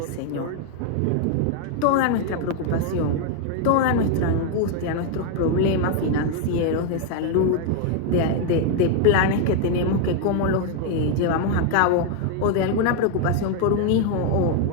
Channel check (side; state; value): both; different; correlation 0.01